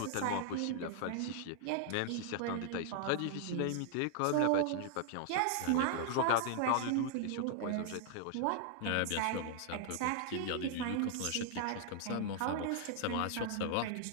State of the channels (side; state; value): both; different; correlation 0.00